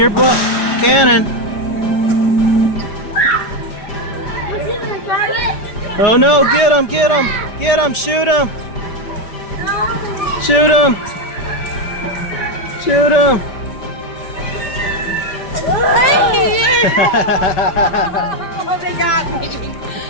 cannon. Was it a target? Oh no, get him, get him, get him, shoot him. Shoot him. Shoot him. Oh, they got me.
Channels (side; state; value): right; late; 5.1 ms